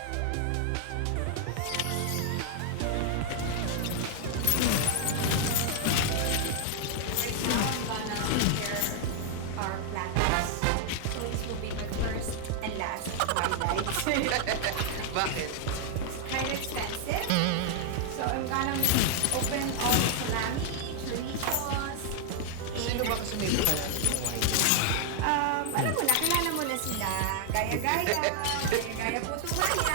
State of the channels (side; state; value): both; different; correlation 0.00